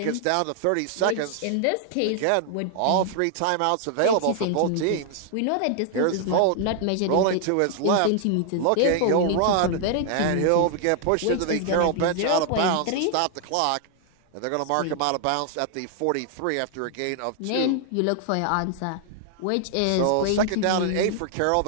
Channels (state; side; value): different; both; correlation 0.00